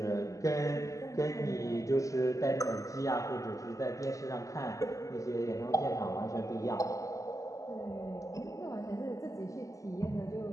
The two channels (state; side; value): late; right; 0.16 ms